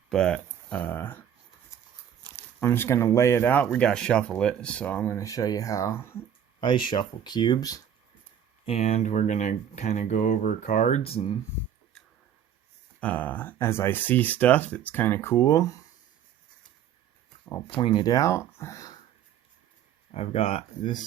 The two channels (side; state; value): left; quieter; 9.3 dB